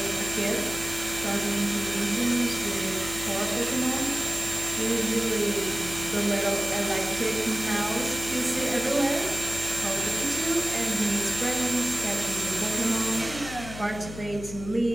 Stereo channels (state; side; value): noise; left; hum, 12 dB below the sound